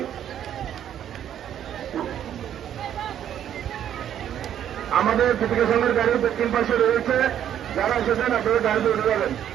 আমাদের দীপিকা সংঘের গাড়ির দক্ষিণ পাশে রয়েছে, যারা এসেছেন আপনাদের গাড়িতে উঠে যাবেন।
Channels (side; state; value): left; quieter; 10.2 dB